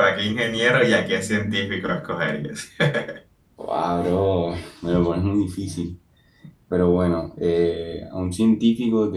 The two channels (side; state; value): both; identical; correlation 1.00